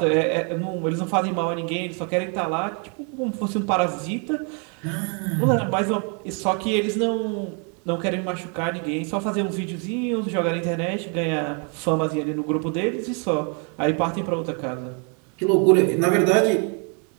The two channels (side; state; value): left; quieter; 37.8 dB